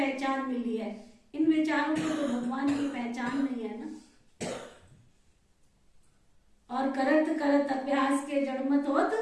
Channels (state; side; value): identical; both; correlation 1.00